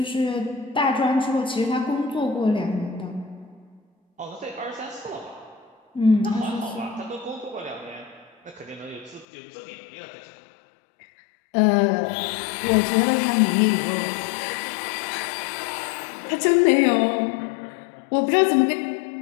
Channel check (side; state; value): right; drops out; at 9.2 s